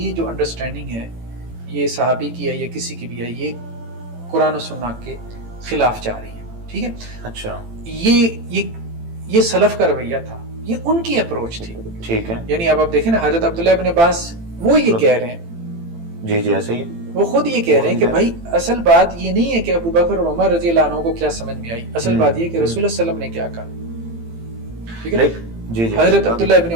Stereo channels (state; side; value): late; left; 18 ms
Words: جو انڈرسٹینڈنگ ہے یہ صحابی کی ہے یا کسی کی بھی ہے، یہ قرآن و سنت کے خلاف جا رہی ہے، ٹھیک ہے، اچھا، یہ سلف کا رویہ تھا، یہ ان کی اپروچ تھی۔ ٹھیک ہے، یعنی اب آپ دیکھیں نا، حضرت عبداللہ ابن عباس وہ یہ کہہ رہے ہیں، جی جی ایسے ہی، وہ خود یہ کہہ رہے ہیں کہ بھائی اصل بات یہ نہیں ہے کہ ابو بکر اور عمر رضی اللہ عنہ کو کیا سمجھ میں آئی، اصل بات یہ ہے کہ رسول اللہ صلی اللہ علیہ وسلم نے کیا کہا، ٹھیک ہے۔ جی جی، حضرت عبداللہ ابن